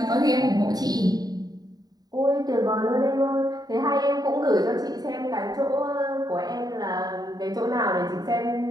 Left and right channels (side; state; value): left; late; 0.19 ms